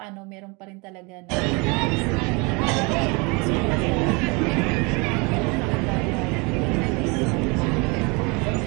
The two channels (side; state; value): left; quieter; 28.9 dB